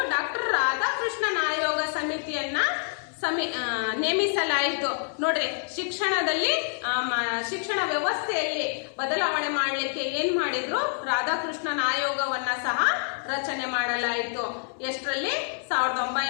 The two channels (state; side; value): silent; right; 60 dB below the other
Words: ಡಾಕ್ಟರ್ ರಾಧಾಕೃಷ್ಣನ್ ಆಯೋಗ ಸಮಿತಿಯನ್ನ ನೇಮಿಸಲಾಯಿತು. ನೋಡ್ರಿ, ಶಿಕ್ಷಣ ವ್ಯವಸ್ಥೆಯಲ್ಲಿ ಬದಲಾವಣೆ ಮಾಡಲಿಕ್ಕೆ ಏನ್ ಮಾಡಿದ್ರು? ರಾಧಾಕೃಷ್ಣನ್ ಆಯೋಗವನ್ನ ಸಹ ರಚನೆ ಮಾಡಲಾಯಿತು. ಎಷ್ಟರಲ್ಲಿ?